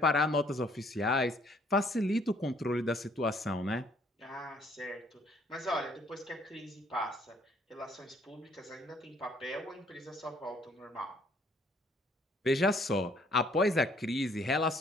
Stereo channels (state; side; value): normal; both; correlation 0.63